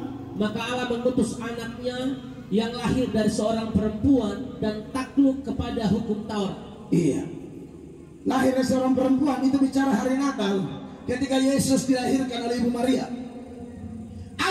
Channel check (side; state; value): both; identical; correlation 1.00